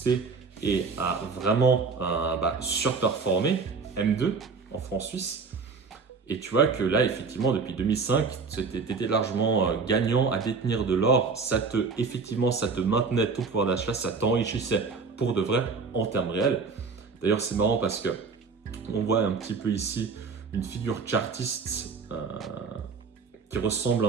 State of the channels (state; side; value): quieter; left; 4.8 dB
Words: et a vraiment surperformé M2 en francs suisses. Et tu vois que là, effectivement, depuis 2005, tu étais largement gagnant à détenir de l'or. Ça te maintenait ton pouvoir d'achat, ça t'enrichissait pour de vrai en termes réels. D'ailleurs, c'est marrant parce que on voit un petit peu ici une figure chartiste qui ressemble